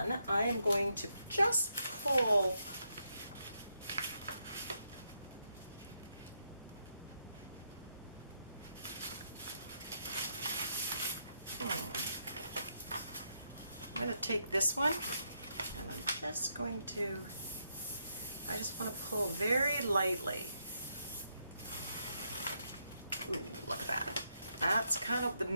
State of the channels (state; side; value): inverted; both; correlation -0.79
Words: I am going to just pull I'm going to take this one and I'm just going to, I just want to pull very lightly. Ooh, look at that. That's kind of the